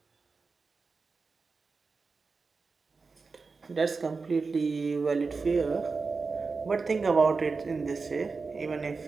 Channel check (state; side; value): quieter; left; 4.4 dB